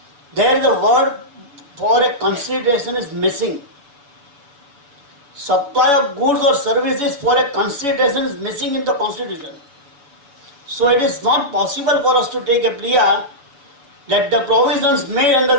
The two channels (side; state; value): left; late; 7.0 ms